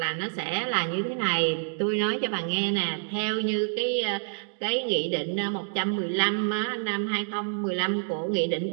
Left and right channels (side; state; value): left; silent; 60 dB below the other